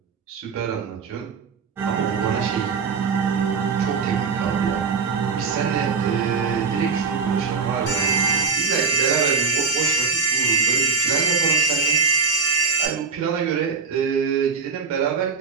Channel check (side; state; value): left; quieter; 5.2 dB